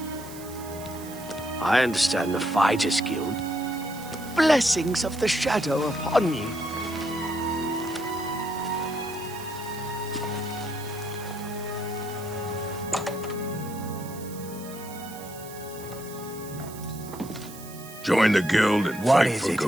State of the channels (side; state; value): right; noise; hiss, 16 dB below the sound